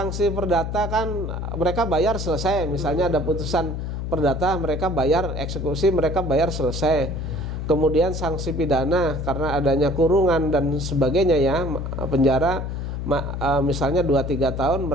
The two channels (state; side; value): noise; left; hum, 4 dB below the sound